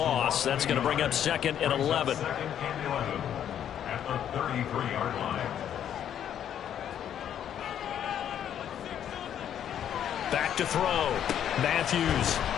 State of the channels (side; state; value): right; quieter; 9.8 dB